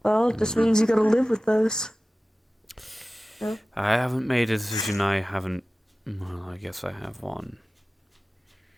Well, it just means you gotta live with those. I haven't made a decision. I haven't. Well, I guess I have one.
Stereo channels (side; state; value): both; normal; correlation 0.96